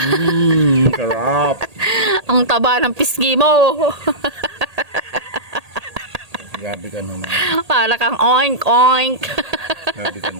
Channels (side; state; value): left; late; 1.8 ms